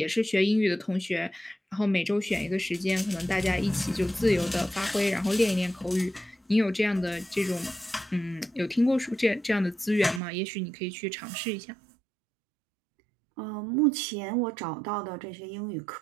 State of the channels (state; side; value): drops out; left; at 10.2 s